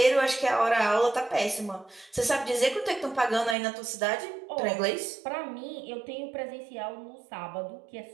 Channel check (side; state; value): left; drops out; at 3.6 s